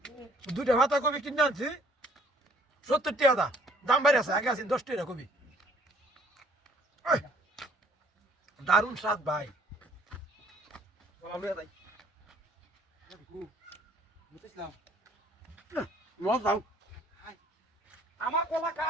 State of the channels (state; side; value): normal; both; correlation 0.59